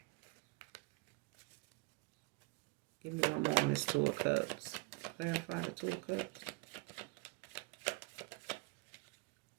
Give me one more on this Two of Cups. Clarify the Two of Cups.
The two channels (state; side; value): quieter; left; 25.2 dB